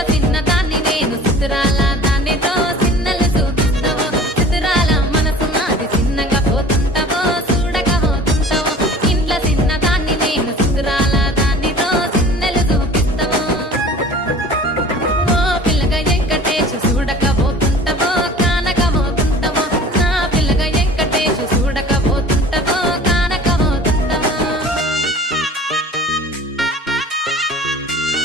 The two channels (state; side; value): normal; both; correlation 0.44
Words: చిన్న దాన్ని నేను సుతురాల దానితో చిన్నలు చూపిస్తావో సుతురాల మనసు నాది చిన్నగా పోతుంటావో చూడక పోతుంటావో ఇంట్లో చిన్న దాన్ని నేను సుతురాల దానితో చిన్నలు చూపిస్తావో ఓ పిల్లగా వెంకటేశు చూడక పోతుంటావో కానక పోతుంటావో నా పిల్లగా వెంకటేశు చూడక పోతుంటావో కానక పోతుంటావో